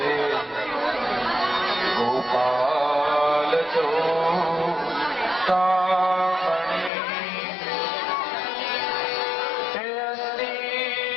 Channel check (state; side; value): drops out; right; at 6.9 s